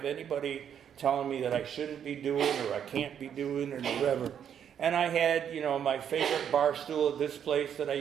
anybody telling me that I shouldn't be doing or I can't be doing or whatever. And I had, my favorite bar stool at this place that I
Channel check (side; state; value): left; quieter; 8.7 dB